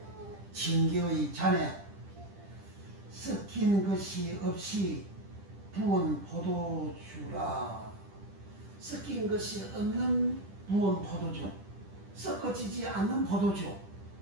징계의 잔에 섞인 것이 없이 부은 포도주라. 섞인 것이 없는 부은 포도주, 섞어지지 않는 포도주,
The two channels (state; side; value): late; left; 10 ms